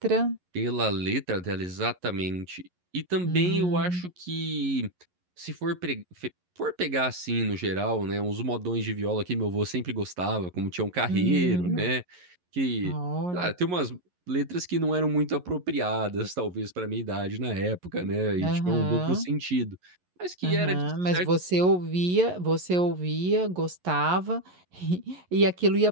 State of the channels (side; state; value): left; late; 11 ms